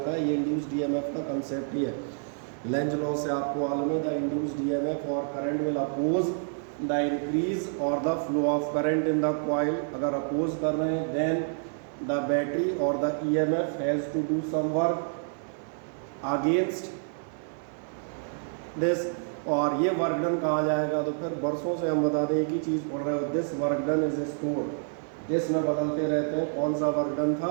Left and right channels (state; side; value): silent; left; 56 dB below the other